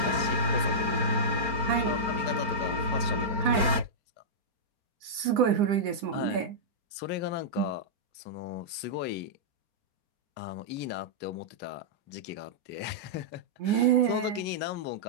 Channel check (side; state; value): left; late; 4.4 ms